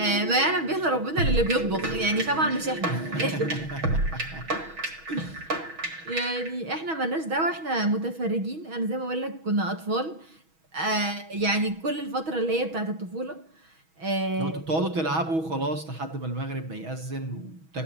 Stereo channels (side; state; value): left; late; 6.2 ms